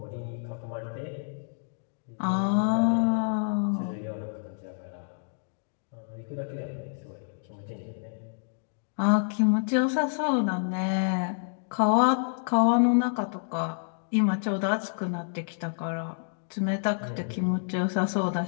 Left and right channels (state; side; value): silent; right; digital silence